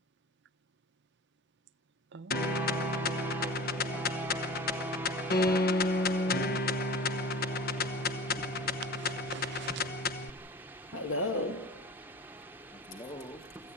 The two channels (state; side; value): normal; both; correlation 0.38